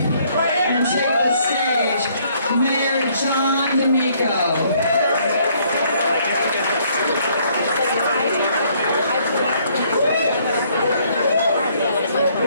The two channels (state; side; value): inverted; both; correlation -0.65